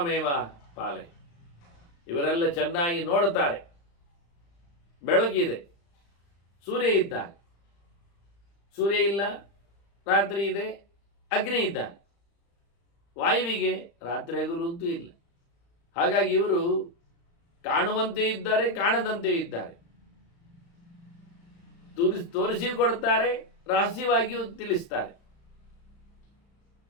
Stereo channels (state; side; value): late; right; 35 ms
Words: ಪಾಲೆ. ಇವರೆಲ್ಲ ಚೆನ್ನಾಗಿ ನೋಡುತ್ತಾರೆ. ಬೆಳಕಿದೆ, ಸೂರ್ಯ ಇದ್ದಾನೆ, ಸೂರ್ಯ ಇಲ್ಲ, ರಾತ್ರಿ ಇದೆ, ಅಗ್ನಿ ಇದ್ದಾನೆ. ವಾಯುವಿಗೆ ರಾತ್ರಿ ಹಗಲು ಅಂತೂ ಇಲ್ಲ. ಹಾಗಾಗಿ ಇವರು ಕಾಣುವಂತೆ ಇದ್ದಾರೆ, ಕಾಣದಂತೆ ಇದ್ದಾರೆ. ತೋರಿಸಿ ಕೊಡ್ತಾರೆ, ರಹಸ್ಯವಾಗಿಯೂ ತಿಳಿಸ್ತಾರೆ.